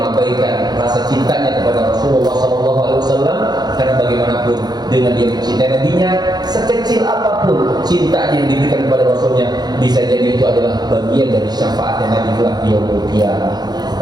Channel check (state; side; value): late; left; 0.20 ms